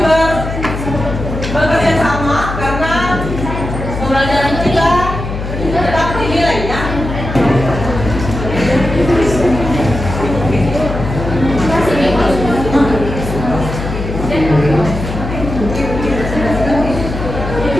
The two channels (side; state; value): left; noise; hum, 6 dB below the sound